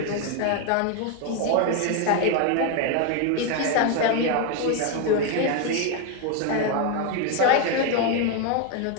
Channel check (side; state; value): both; different; correlation 0.01